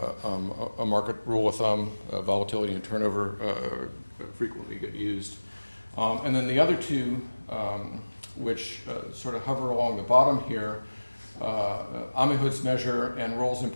a market rule of thumb. Volatility and turnover frequently get used. And then the other two, which sort of hover along the bottom here, Amihud's measure and Roll's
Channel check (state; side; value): inverted; both; correlation -1.00